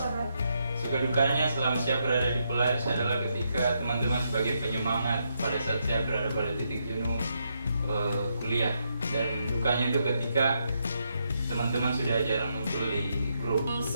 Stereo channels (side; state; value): both; inverted; correlation -0.79